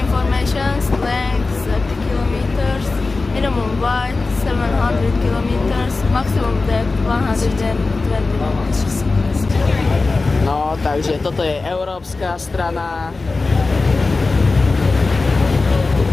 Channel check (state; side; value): quieter; right; 3.7 dB